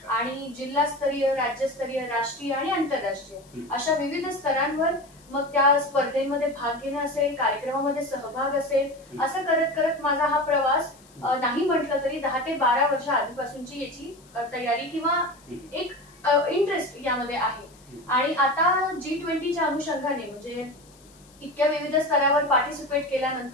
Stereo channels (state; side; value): noise; left; hiss, 27 dB below the sound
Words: आणि जिल्हास्तरीय, राज्यस्तरीय, राष्ट्रीय आणि आंतरराष्ट्रीय अशा विविध स्तरांवर मग त्या स्पर्धेमध्ये भाग घेणं असेल, कार्यक्रमामध्ये सहभाग असेल, असं करत करत माझा हा प्रवास नाही म्हटलं तरी 10 ते 12 वर्ष आधीपासूनची याची तयारी किंवा एक इंटरेस्ट यामध्ये आहे. आणि आता G20च्या अनुषंगाने म्हणजे इतक्या विविध स्तरावर पार्टिसिपेट